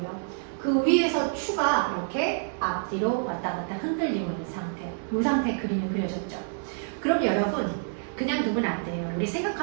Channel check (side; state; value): left; silent; 60 dB below the other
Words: 그 위에서 추가 이렇게 앞뒤로 왔다 갔다 흔들리고 있는 상태. 이 상태 그림이 그려졌죠. 그럼 여러분 그냥 두면 안 돼요. 우리